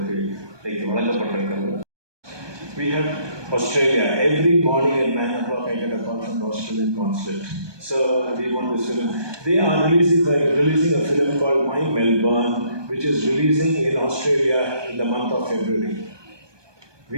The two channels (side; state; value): left; late; 1.2 ms